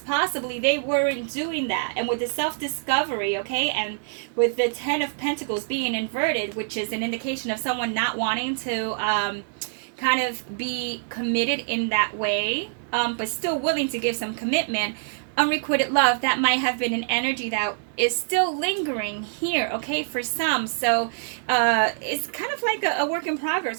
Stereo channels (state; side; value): silent; left; digital silence